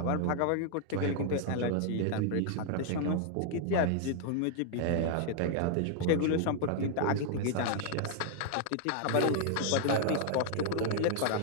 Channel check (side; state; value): both; different; correlation 0.00